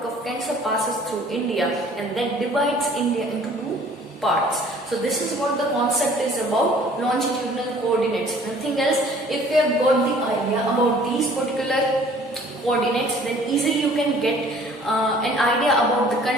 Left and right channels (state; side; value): normal; both; correlation 0.53